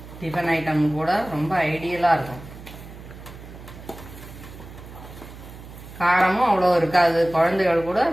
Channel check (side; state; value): right; noise; hum, 16 dB below the sound